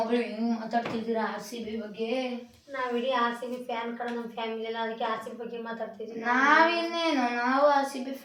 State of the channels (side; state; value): both; identical; correlation 1.00